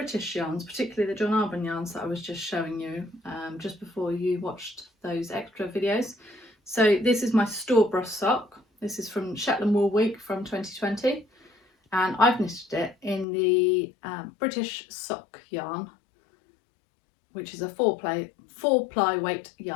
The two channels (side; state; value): right; drops out; at 13.2 s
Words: yarns, particularly the John Arbon yarns that I was just showing you just before you watched those extra videos. So this is my store-bought sock. This is from Shetland Wool Week from 2020, and I've knitted it in the British sock yarn, which is a four ply weight